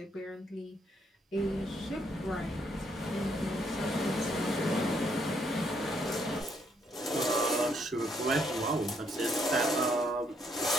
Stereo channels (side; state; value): both; normal; correlation 0.72